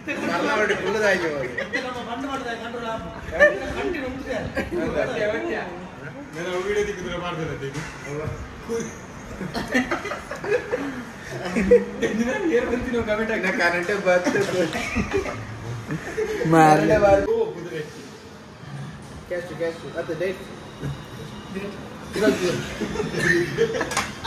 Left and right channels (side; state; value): both; identical; correlation 1.00